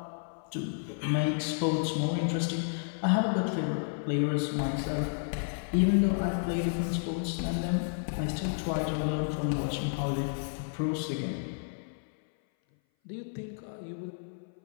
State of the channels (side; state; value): right; silent; 57 dB below the other